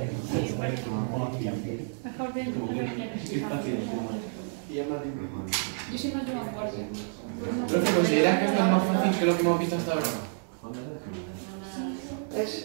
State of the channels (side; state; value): left; silent; 58 dB below the other